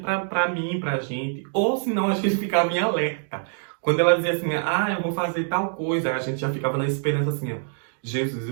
mim, pra gente. Ou senão a gente ficava em alerta. Quando ela dizia assim, eu vou fazer tal coisa, a gente já ficava na esperança assim, ó. Jesus,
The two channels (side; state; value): left; silent; digital silence